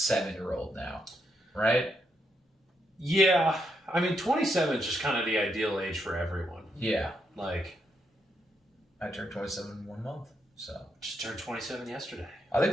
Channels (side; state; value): both; normal; correlation 0.79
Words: now, right? Yeah, I mean 27 is just kind of the ideal age for everyone. Yeah, like. I turned 27 in 1 month, so. Just turned 27 yesterday. I